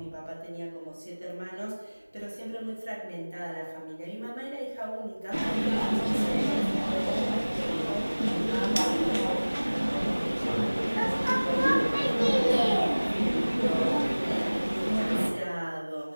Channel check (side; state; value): both; inverted; correlation -1.00